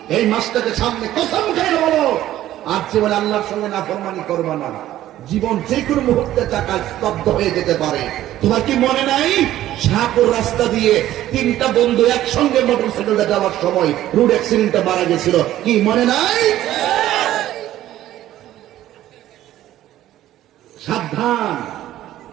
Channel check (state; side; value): quieter; left; 13.5 dB